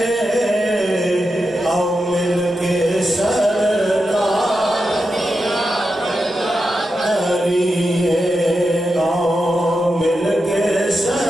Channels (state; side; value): normal; both; correlation 0.88